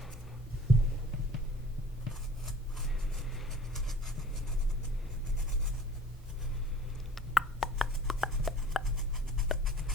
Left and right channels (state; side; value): normal; both; correlation 0.48